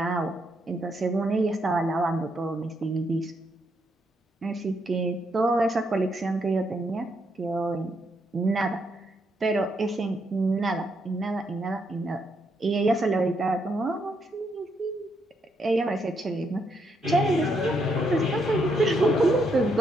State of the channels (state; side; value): normal; both; correlation 0.77